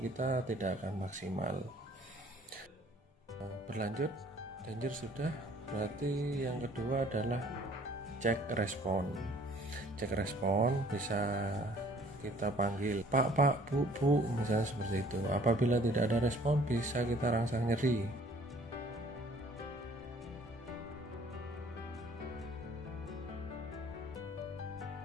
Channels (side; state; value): both; normal; correlation 0.55